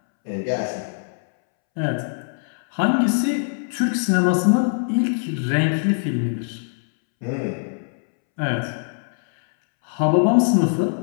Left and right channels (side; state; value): right; silent; 64 dB below the other